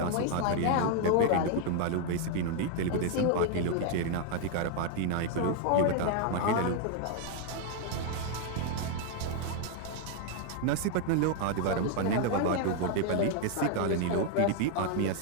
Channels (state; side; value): different; both; correlation 0.00